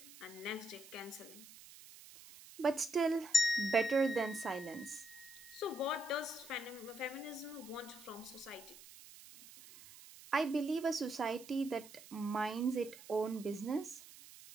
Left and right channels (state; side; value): noise; right; hiss, 18 dB below the sound